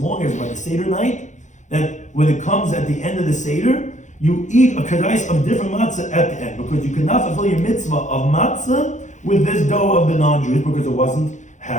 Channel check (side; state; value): right; late; 0.35 ms